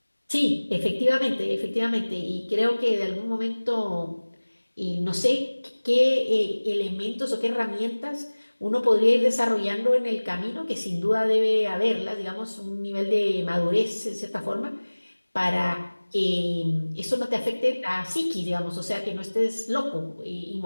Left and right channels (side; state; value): both; inverted; correlation -1.00